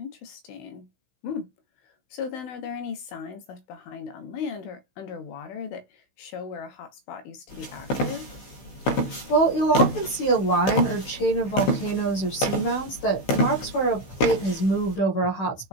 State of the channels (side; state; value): right; late; 16 ms